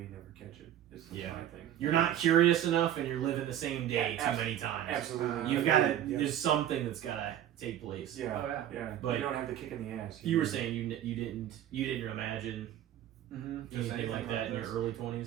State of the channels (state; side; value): quieter; left; 11.4 dB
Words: never catch it. Is my thing. You're not curious enough, and you're living the same day too many times. Absolutely. You've got to. There's something that's got to take place. Yeah. Oh, yeah. Yeah. But you don't have the kick in the ass. You were saying you didn't imagine anything like that in your early